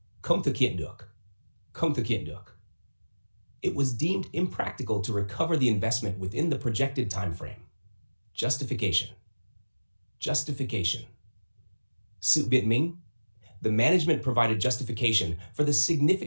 Không thực hiện được. Không thực hiện được. It was deemed impractical to recover the investment within the projected time frame. Justification. Justification. Sự biện minh. The management provided justification for the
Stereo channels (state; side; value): inverted; both; correlation -1.00